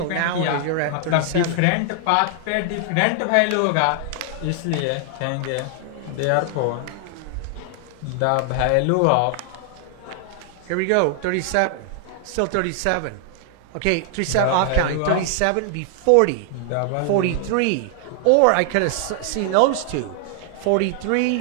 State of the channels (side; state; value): both; different; correlation 0.00